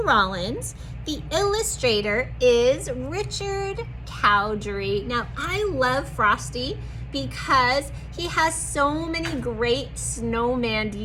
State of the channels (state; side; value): identical; both; correlation 1.00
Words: Rollins. The illustrator is Richard Cowdery. Now, I love Frosty because he has so many great snowman